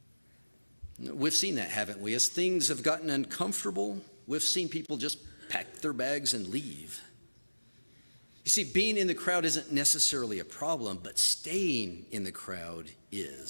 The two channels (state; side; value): inverted; both; correlation -1.00